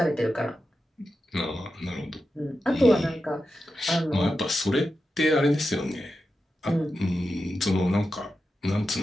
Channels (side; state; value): both; normal; correlation 0.90